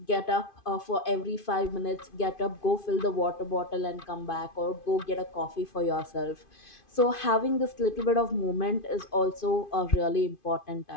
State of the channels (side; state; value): right; late; 2.5 ms